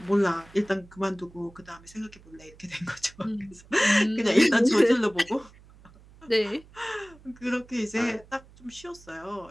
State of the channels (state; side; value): noise; right; hum, 24 dB below the sound